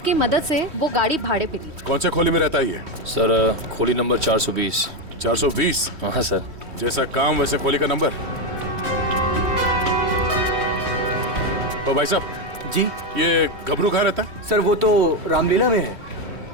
की मदद से वो गाड़ी भाड़े पे ली। कौन से खोली में रहता है ये? सर खोली नंबर 420। 420? हाँ सर। जैसा काम वैसे खोली का नंबर। तो भाई साहब जी, ये गबरू कहाँ रहता है? सर वो तो रामलीला में है।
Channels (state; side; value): late; left; 3.1 ms